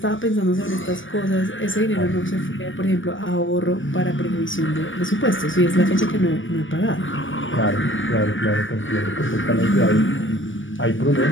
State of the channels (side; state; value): right; late; 0.56 ms